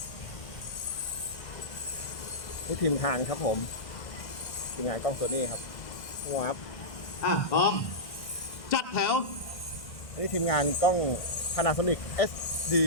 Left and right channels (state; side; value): late; right; 1.6 ms